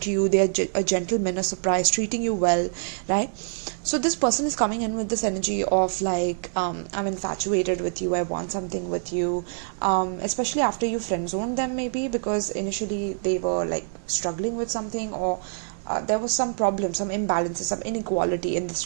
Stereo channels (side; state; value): left; silent; digital silence